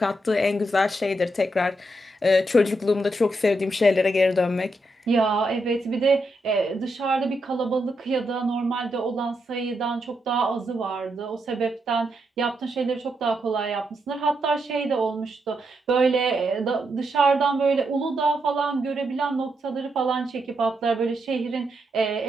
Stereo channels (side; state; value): both; normal; correlation 0.82